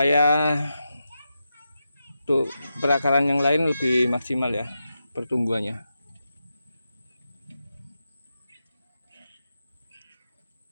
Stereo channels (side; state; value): both; inverted; correlation -0.88